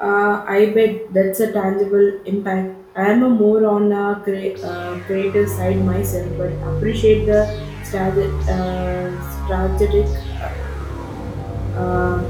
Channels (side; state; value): both; identical; correlation 1.00